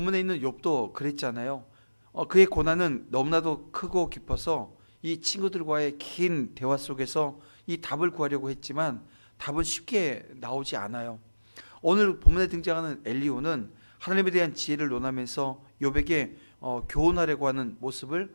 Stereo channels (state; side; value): inverted; both; correlation -1.00